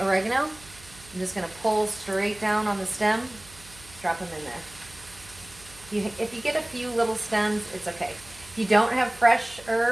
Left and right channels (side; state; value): right; noise; hum, 21 dB below the sound